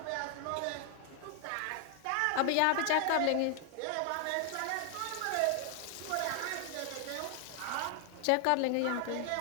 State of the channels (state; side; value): different; both; correlation 0.00